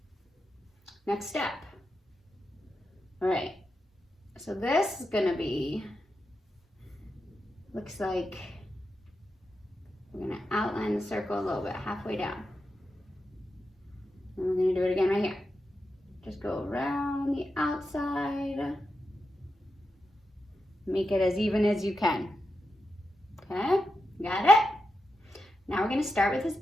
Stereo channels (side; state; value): both; normal; correlation 0.88